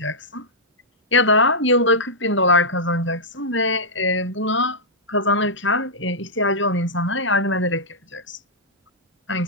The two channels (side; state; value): both; normal; correlation -0.10